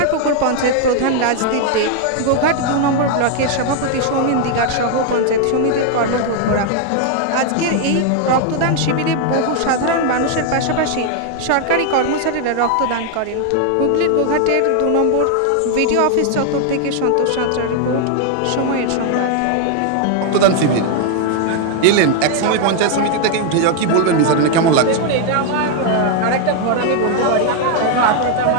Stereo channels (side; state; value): both; different; correlation 0.00